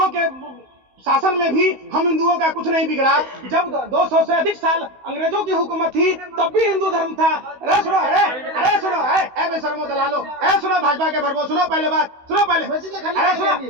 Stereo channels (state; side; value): late; left; 16 ms